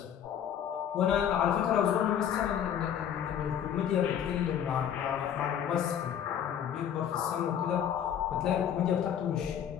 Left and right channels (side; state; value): right; quieter; 9.2 dB